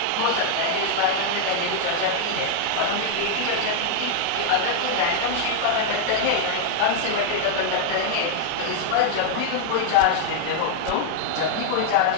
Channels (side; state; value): both; different; correlation 0.00